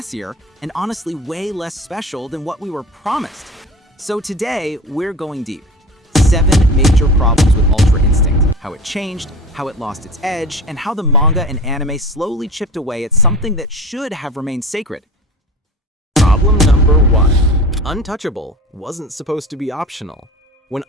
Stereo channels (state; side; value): normal; both; correlation 0.35